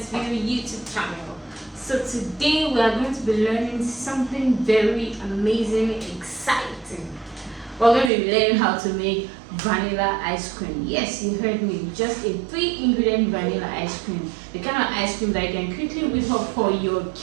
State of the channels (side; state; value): left; drops out; at 8.1 s